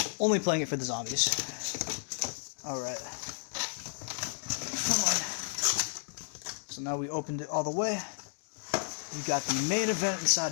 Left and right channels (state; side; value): silent; right; digital silence